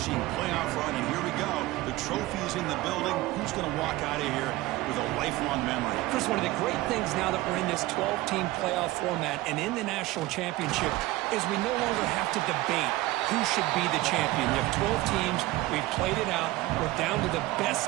playoff run, and here we go. The trophy is in the building. Who's going to walk out of here with a lifelong memory? Chris, one of the great things now that we're in this 12-team playoff format and in the national championship is we no longer have to debate who should be the champion. You have 12 teams. We've played it out. We're down to the best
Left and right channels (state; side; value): quieter; left; 18.3 dB